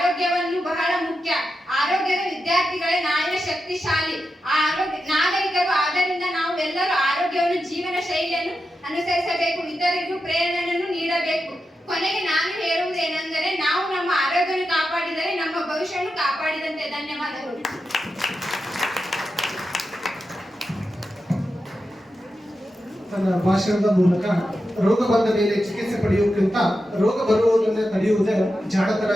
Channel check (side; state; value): both; normal; correlation 0.89